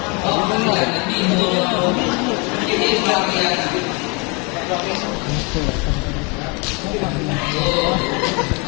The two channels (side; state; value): right; quieter; 30.8 dB